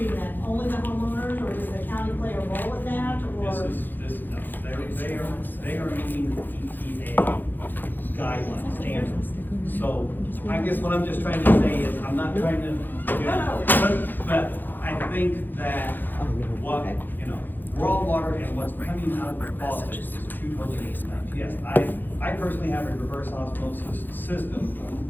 that? Only the homeowners, or does the county play a role in that, or? No, they are meeting EPA guidelines, standards. So I guess what I'm just trying to say is, I'm not trying to, but I think that what, you know, raw water and what's coming out of the faucet is two totally different things. Yes, I personally have a reverse osmosis system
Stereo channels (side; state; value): right; late; 0.089 ms